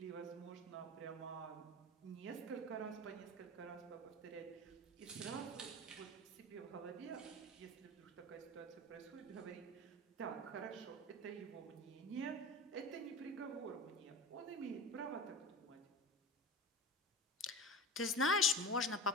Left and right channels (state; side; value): normal; both; correlation 0.31